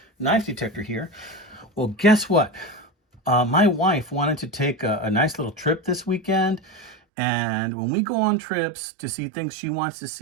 knife detector here. Well, guess what? My wife wanted to take a nice little trip this weekend. And when we go on trips to see things she wants to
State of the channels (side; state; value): left; drops out; at 7.0 s